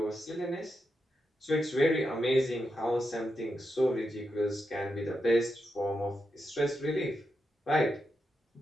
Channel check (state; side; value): normal; both; correlation 0.86